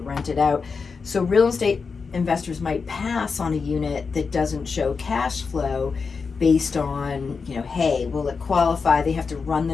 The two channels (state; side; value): quieter; right; 5.1 dB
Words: rent it out. So real estate investors might pass on a unit that doesn't show cash flow based on, hey, will it qualify? They have to run